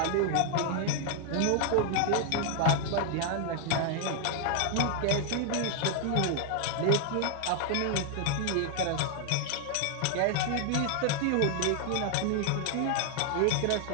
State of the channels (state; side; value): different; both; correlation 0.00